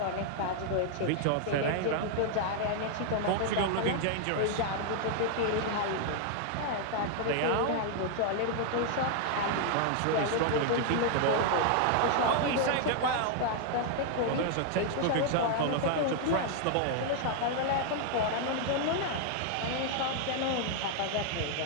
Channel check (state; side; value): different; both; correlation 0.00